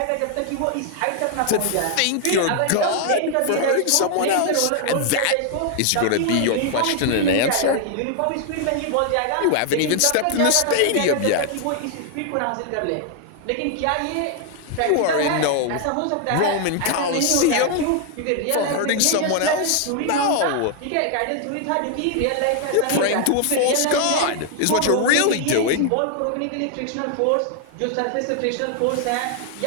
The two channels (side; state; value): both; different; correlation 0.00